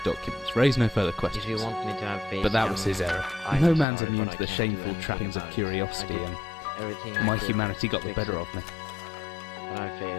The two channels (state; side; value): drops out; right; at 3.9 s